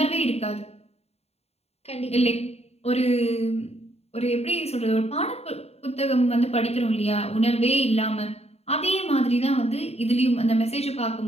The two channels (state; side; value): late; right; 0.30 ms